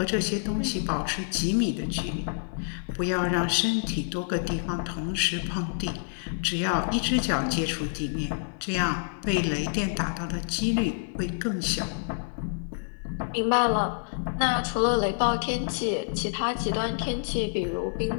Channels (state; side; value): silent; right; 60 dB below the other